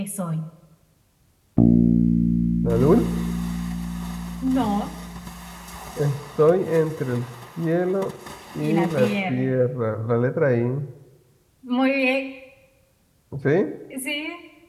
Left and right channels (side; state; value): both; identical; correlation 1.00